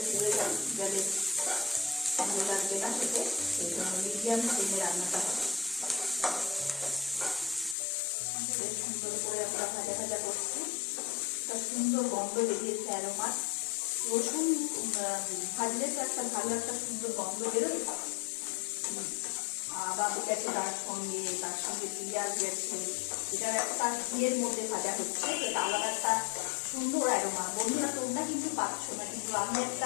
পুড়ে গেলে ভালো লাগবে না খেতে, সেই জন্য মিডিয়াম ফ্লেমে রান্নাটা হবে। বেশ সুন্দর করে আমরা ভাজা ভাজা করছি, একটা সুন্দর গন্ধ বেরিয়েছে অ্যারোমা। রসুন ভাজলে তো একটা ভালো একটা সুন্দর গন্ধ বেরোয়। বাবু গেছে তার সঙ্গে পেঁয়াজ গেছে, এটার একটা ঘিয়ের মধ্যে ভাজা হচ্ছে, এটা আলাদা একটা সুন্দর অ্যারোমা। বন্ধুরা তোমরা কিন্তু পাচ্ছ না, কিন্তু আমি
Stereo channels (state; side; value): drops out; right; at 7.8 s